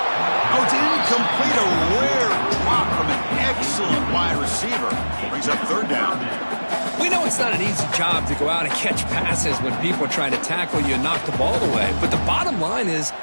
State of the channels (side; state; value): both; inverted; correlation -1.00